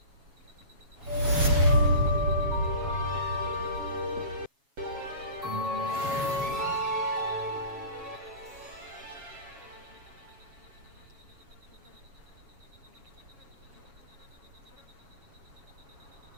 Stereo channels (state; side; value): late; left; 7.2 ms